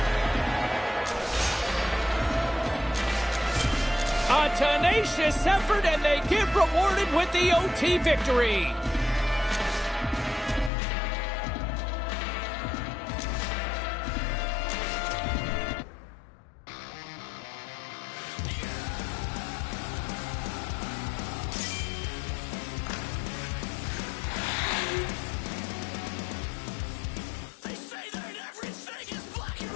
A tenacious effort, and they get rewarded with the OT victory.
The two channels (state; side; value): drops out; right; at 10.7 s